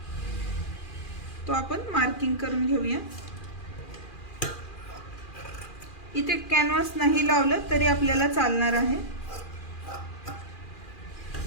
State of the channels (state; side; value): late; right; 2.4 ms